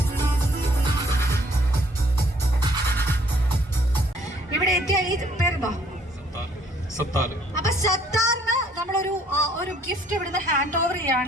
ഇവിടെ എത്തിയ ഈ പേരെന്താ? അപ്പൊ സത്താറിന് നമ്മളൊരു ഗിഫ്റ്റ് ഇവിടുന്ന് ഹാൻഡ് ഓവർ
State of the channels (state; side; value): normal; both; correlation 0.62